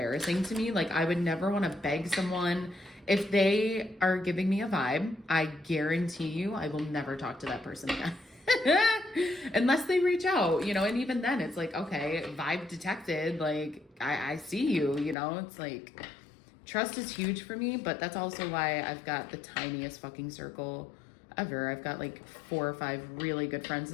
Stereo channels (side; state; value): right; drops out; at 15.2 s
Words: to me. Like I would never want to beg someone. If they are giving me a vibe, I guarantee you I will never talk to that person again. Unless they reach out, you know, and even then it's like, okay, vibe detected, like I see you, you know, it's like trust is huge for me, but that's also why I've got the tiniest fucking circle ever. I've got like 4 or 5 really good friends